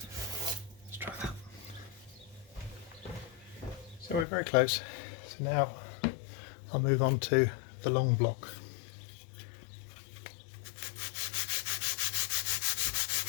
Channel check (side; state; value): right; drops out; at 4.2 s